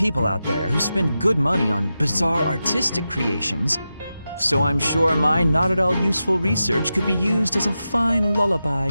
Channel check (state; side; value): inverted; both; correlation -0.91